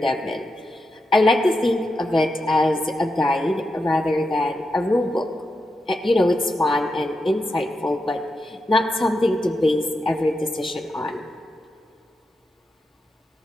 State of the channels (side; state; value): both; normal; correlation 0.87